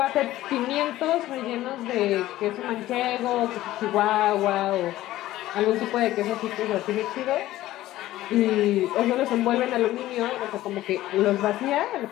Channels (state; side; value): quieter; right; 15.3 dB